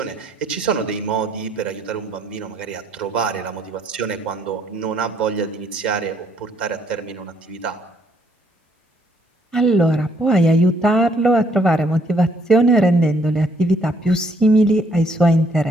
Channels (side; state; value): both; normal; correlation 0.68